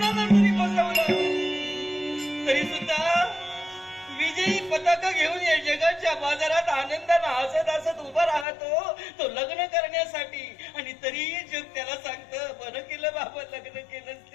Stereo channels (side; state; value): right; drops out; at 8.5 s